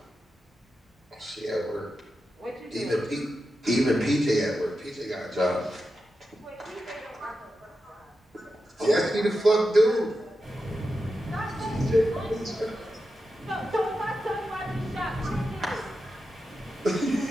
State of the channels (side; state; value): both; normal; correlation 0.90